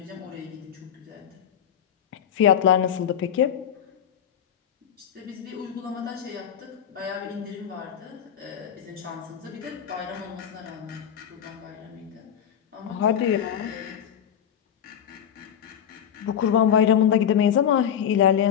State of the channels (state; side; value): quieter; right; 9.1 dB